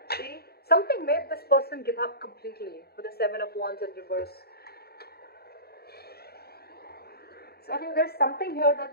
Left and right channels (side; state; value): right; late; 0.46 ms